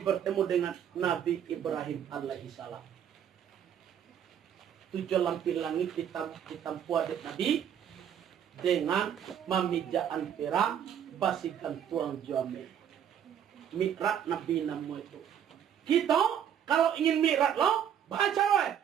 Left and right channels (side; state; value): left; quieter; 9.1 dB